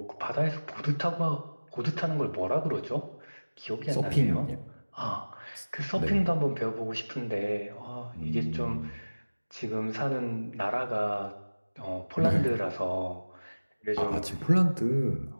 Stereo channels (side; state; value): both; inverted; correlation -1.00